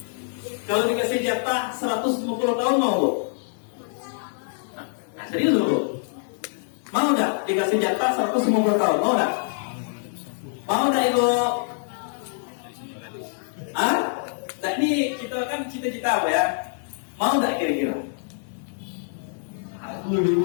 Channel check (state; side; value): silent; right; digital silence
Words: Kalau dikasih jatah 150 tahun mau bu? Nah serius loh. Mau nggak dikasih jatah 150 tahun? Mau nggak? Mau nggak ibu? Nah ini kita kan cita-cita apa ya? Mau nggak kira-kira? Aku